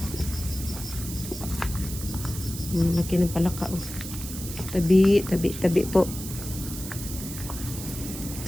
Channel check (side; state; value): right; noise; hiss, 10 dB below the sound